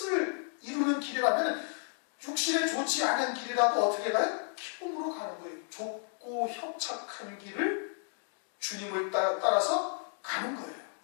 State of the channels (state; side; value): silent; right; 56 dB below the other